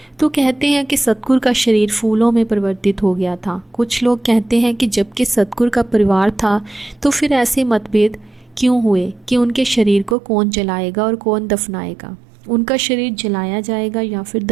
तो कहते हैं कि सतगुरु का शरीर फूलों में परिवर्तित हो गया था। कुछ लोग कहते हैं कि जबकि सतगुरु का परिवार था तो फिर ऐसे मतभेद क्यों हुए कि उनके शरीर को कौन जलाएगा और कौन दफनाएगा, उनका शरीर जलाया जाएगा या फिर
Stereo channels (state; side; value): drops out; left; at 10.2 s